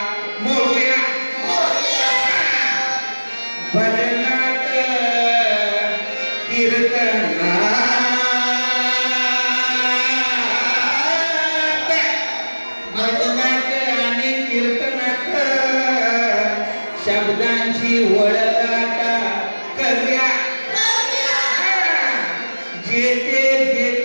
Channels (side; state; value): both; inverted; correlation -1.00